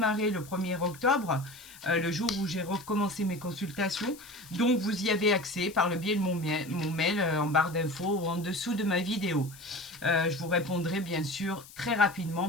le 1er octobre, le jour où j'ai recommencé mes consultations. Donc, vous y avez accès par le biais de mon mail en barre d'infos ou en dessous de ma vidéo. Je vous répondrai bien sûr très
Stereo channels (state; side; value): noise; left; hiss, 19 dB below the sound